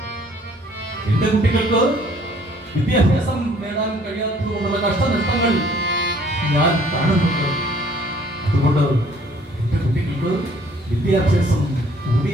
എന്റെ കുട്ടികൾക്ക് വിദ്യാഭ്യാസം നേടാൻ കഴിയാത്തതുകൊണ്ടുള്ള കഷ്ടനഷ്ടങ്ങൾ ഞാൻ കാണുന്നുണ്ട്. അതുകൊണ്ട് എന്റെ കുട്ടികൾക്ക് വിദ്യാഭ്യാസം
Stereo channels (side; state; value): both; normal; correlation 0.59